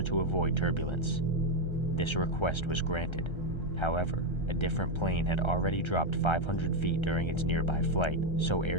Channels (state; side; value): late; right; 1.3 ms